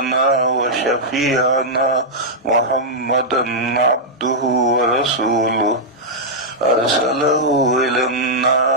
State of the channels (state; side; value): normal; both; correlation -0.08